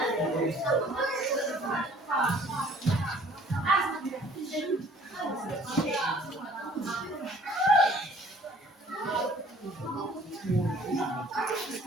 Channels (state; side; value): normal; both; correlation 0.54